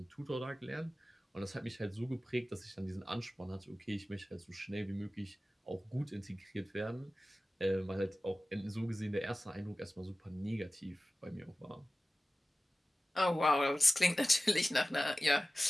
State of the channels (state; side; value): normal; both; correlation 0.96